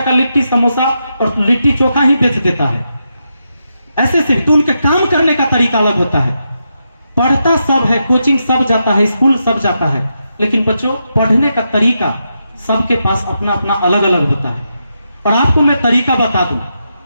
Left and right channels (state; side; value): inverted; both; correlation -0.84